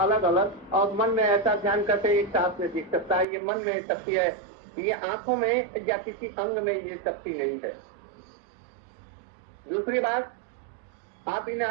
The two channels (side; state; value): left; drops out; at 3.2 s